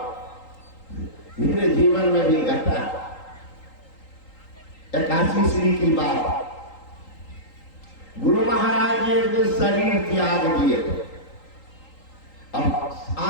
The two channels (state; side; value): late; right; 3.8 ms